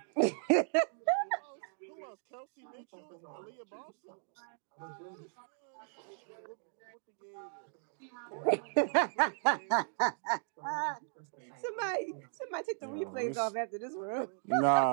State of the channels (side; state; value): left; silent; digital silence